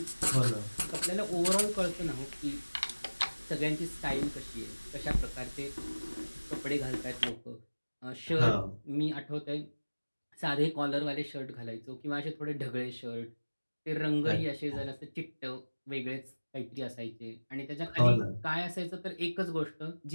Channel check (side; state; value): both; inverted; correlation -1.00